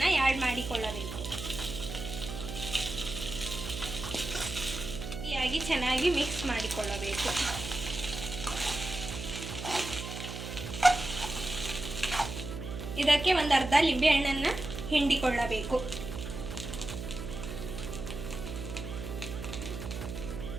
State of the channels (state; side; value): noise; right; hum, 7 dB below the sound